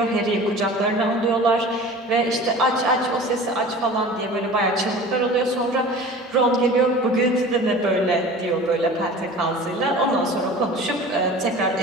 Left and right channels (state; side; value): normal; both; correlation 0.40